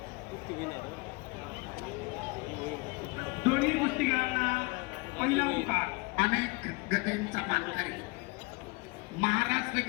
दोन्ही कुस्तीगीरांना पहिला पुकार. अनेक गतींचा मानकरी महाराष्ट्र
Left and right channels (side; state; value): right; quieter; 26.5 dB